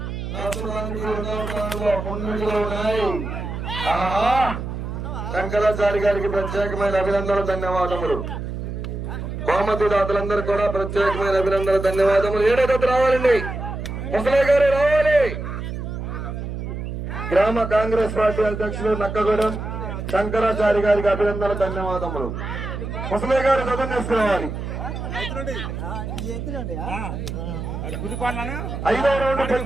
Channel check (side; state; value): right; noise; hum, 6 dB below the sound